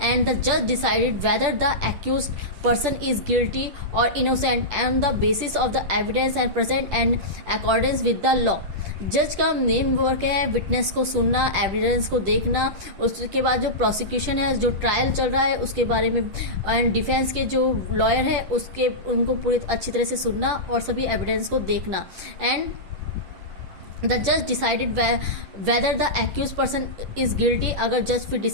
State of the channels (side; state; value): left; late; 10 ms